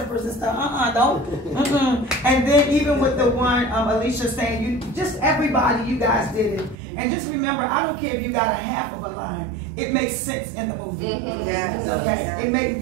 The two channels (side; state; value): left; drops out; at 6.8 s